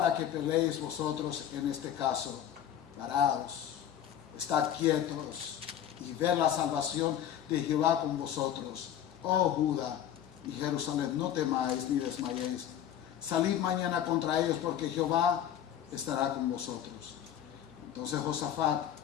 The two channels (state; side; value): quieter; right; 10.3 dB